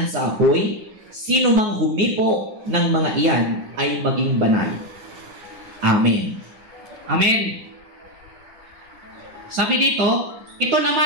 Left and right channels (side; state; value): left; late; 9.7 ms